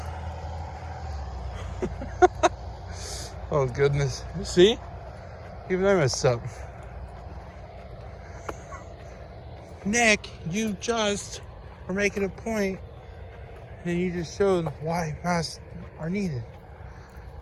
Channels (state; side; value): identical; both; correlation 1.00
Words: Oh, goodness. See? Even I messed up. Nick, you just were making a point, and you just showed why masks are needed.